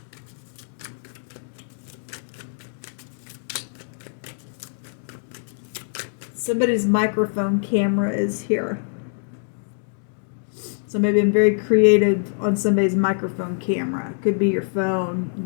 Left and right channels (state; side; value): silent; right; digital silence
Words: Somebody's microphone camera is here. Somebody been very creative on somebody's microphone camera. Could be your phone.